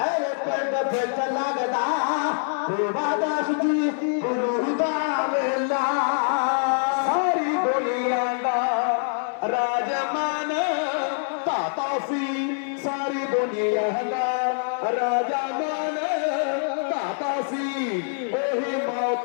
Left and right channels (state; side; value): silent; right; 62 dB below the other